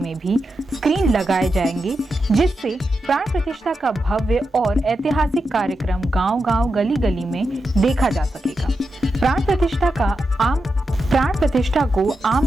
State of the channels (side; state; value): both; normal; correlation 0.88